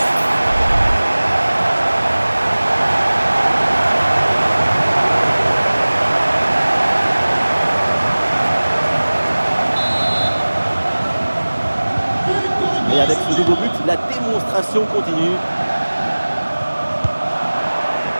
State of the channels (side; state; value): both; inverted; correlation -1.00